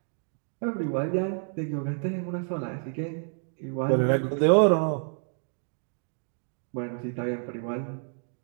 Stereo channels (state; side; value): silent; left; 59 dB below the other